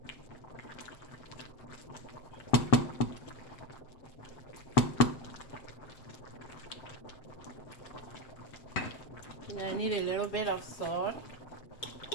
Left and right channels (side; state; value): right; late; 7.7 ms